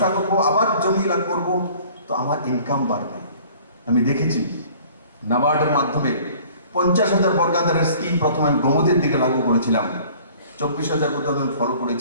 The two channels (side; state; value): both; inverted; correlation -0.51